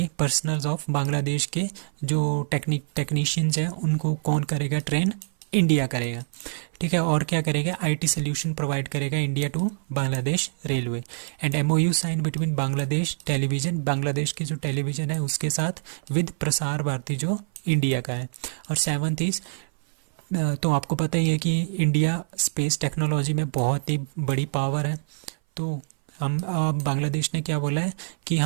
पर्सनल्स ऑफ बांग्लादेश के जो टेक्नीशियंस हैं, उनको कौन करेगा ट्रेन, इंडिया करेगा, ठीक है। और क्या करेगा, IT सोल्यूशन प्रोवाइड करेगा India to Bangladesh railway. And MOU sign between Bangladesh television, Bangladesh की जो टेलीविजन है उसके साथ, विद प्रसार भारती जो इंडिया का है। और 7th इज, तो आपको पता ही है कि इंडिया स्पेस टेक्नोलॉजी में बहुत ही बड़ी पावर है। तो हम बांग्लादेश ने क्या बोला है कि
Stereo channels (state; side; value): silent; left; 58 dB below the other